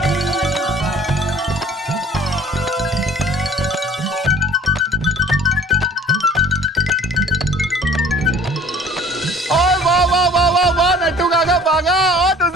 नट्टू काका भागा और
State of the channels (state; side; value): normal; both; correlation 0.50